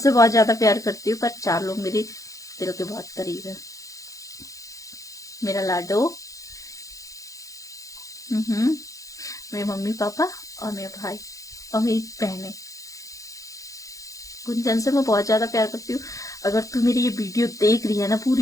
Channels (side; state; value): right; late; 0.16 ms